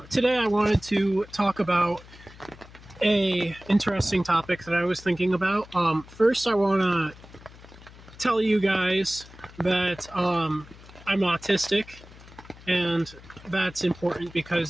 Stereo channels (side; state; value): left; noise; hum, 20 dB below the sound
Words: I wanted to talk about a interesting topic that I was thinking about. First, I want to tell you guys that I'm autistic, and that's important